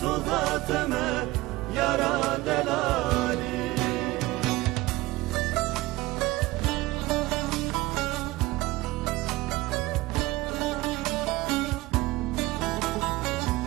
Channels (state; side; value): quieter; left; 19.6 dB